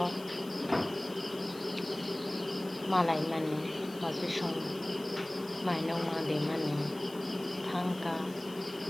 मालाय मानि बाजै सं माइनाव मादै मानि थांका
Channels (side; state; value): left; noise; hiss, 20 dB below the sound